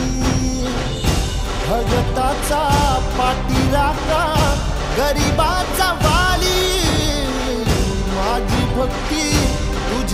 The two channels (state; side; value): identical; both; correlation 1.00